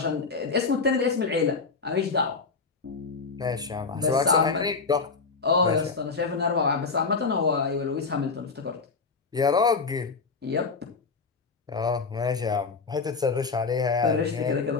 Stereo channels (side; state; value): right; quieter; 4.6 dB